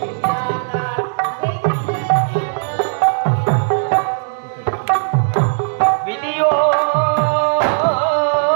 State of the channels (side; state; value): left; silent; digital silence